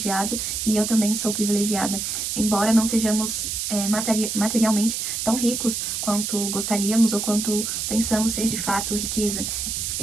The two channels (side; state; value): right; noise; hiss, 2 dB below the sound